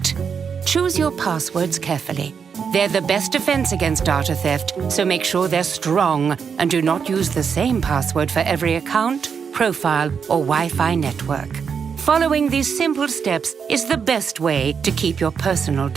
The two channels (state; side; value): quieter; left; 6.5 dB